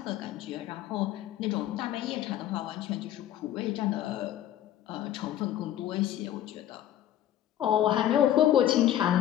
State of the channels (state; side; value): quieter; right; 12.0 dB